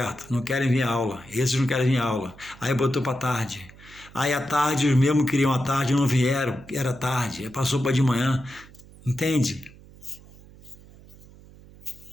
não querem vir à aula, esses não querem vir à aula. Aí botou para tarde. Aí à tarde, os mesmos queriam à tarde, não vieram, era tarde, aí passou para de manhã, entende?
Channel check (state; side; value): noise; right; hum, 22 dB below the sound